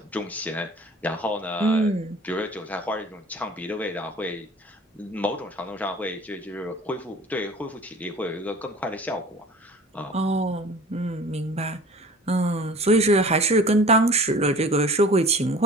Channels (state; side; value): normal; both; correlation 0.42